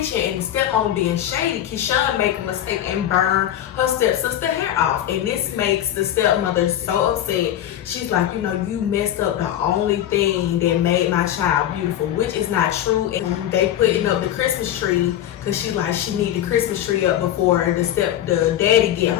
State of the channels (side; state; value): right; quieter; 11.6 dB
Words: and the stepmom being shady, Keyshawn make a mistake and burn her stepsister hair off. And this makes the stepmother so upset. She's like, you know, you messed up the only thing that made my child beautiful, which is not true. And they putting up the Christmas tree because she's like, she need the Christmas tree up before the daddy get